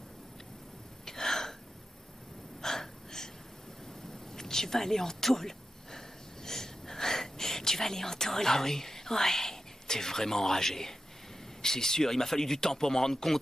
Tu vas aller en tôle. Tu vas aller en tôle. Ah oui? Ouais. T'es vraiment enragé. C'est sûr, il m'a fallu du temps pour m'en rendre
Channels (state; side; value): normal; both; correlation 0.91